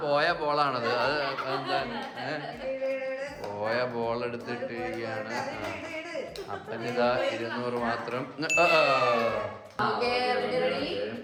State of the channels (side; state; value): both; identical; correlation 1.00